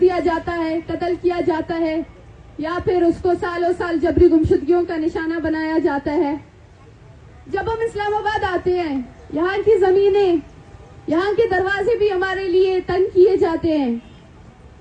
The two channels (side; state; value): both; identical; correlation 1.00